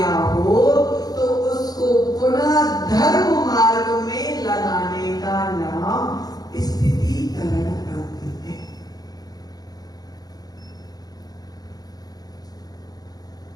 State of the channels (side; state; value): right; late; 0.19 ms